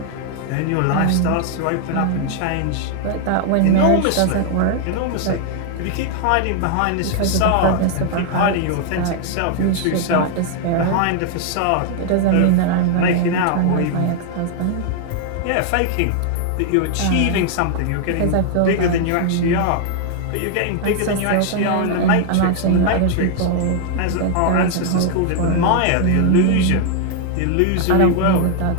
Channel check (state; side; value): different; both; correlation 0.00